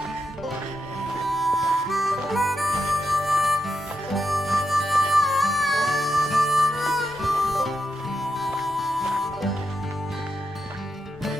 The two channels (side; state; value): both; normal; correlation 0.85